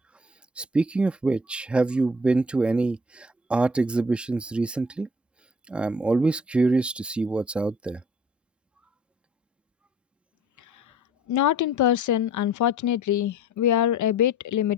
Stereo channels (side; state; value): both; normal; correlation 0.50